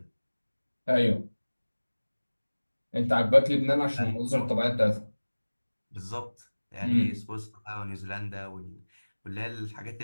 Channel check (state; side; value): inverted; both; correlation -1.00